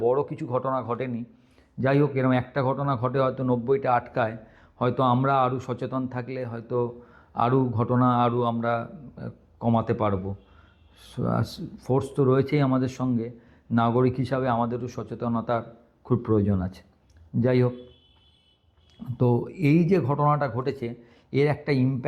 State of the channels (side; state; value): both; identical; correlation 1.00